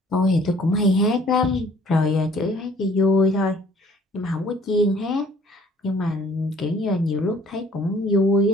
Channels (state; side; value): normal; both; correlation 0.56